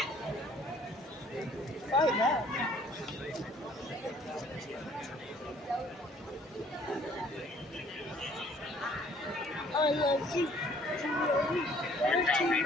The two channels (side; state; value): both; normal; correlation 0.58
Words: I love you.